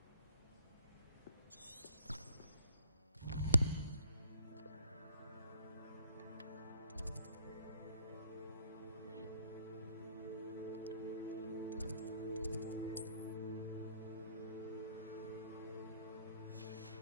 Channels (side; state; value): both; inverted; correlation -0.65